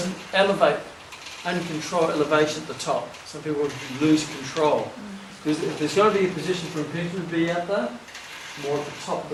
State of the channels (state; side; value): identical; both; correlation 1.00